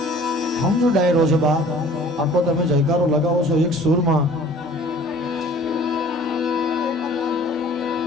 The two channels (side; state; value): both; normal; correlation 0.50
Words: સમજો ડાયરો છે બા, આખો તમે જયકારો લગાવો છો એક સુરમાં.